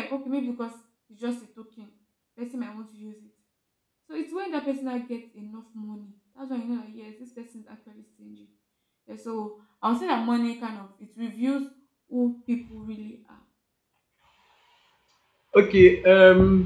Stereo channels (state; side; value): identical; both; correlation 1.00